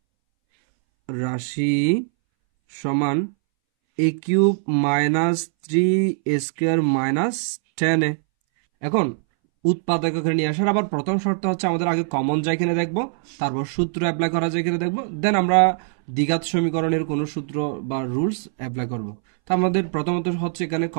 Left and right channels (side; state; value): left; silent; 63 dB below the other